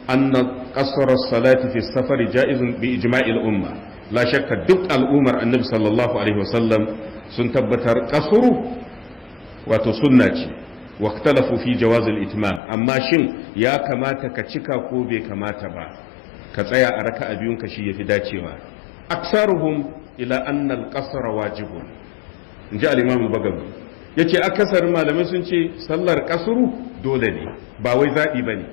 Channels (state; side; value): drops out; right; at 12.6 s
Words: anna qasr as-salati fi as-safar ja'izun bi ijma'i al-umma la shakka duk al'ummar annabi sallallahu alaihi wasallam sun tabbatar kasuru wato sunna ce واختلفوا في جواز الاتمام amma shin ya kamata ka cika ko bai kamata ba ka tsaya a raka'a biyun ka shi yafi dacewa aksaruhum ila anna al-qasr wajibun inji al-imam al-bagawi yace akasarin malamai sun ce sallar kasru dole ne ba wai zabi bane